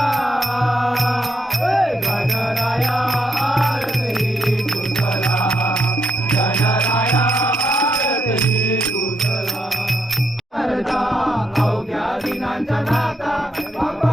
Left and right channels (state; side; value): normal; both; correlation 0.77